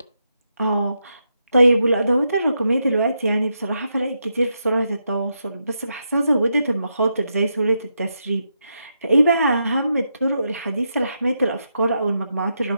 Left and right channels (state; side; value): inverted; both; correlation -0.84